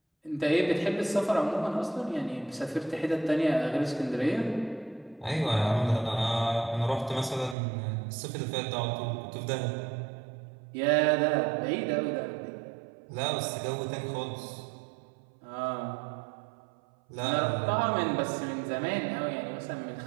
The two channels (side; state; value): left; drops out; at 7.6 s